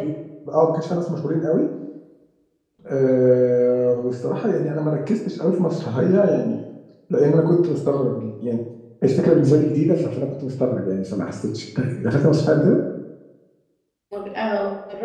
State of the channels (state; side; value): identical; both; correlation 1.00